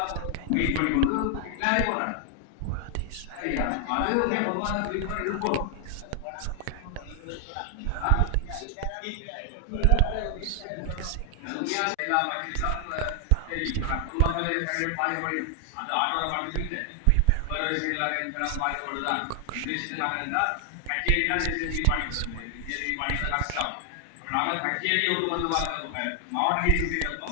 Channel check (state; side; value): different; both; correlation 0.00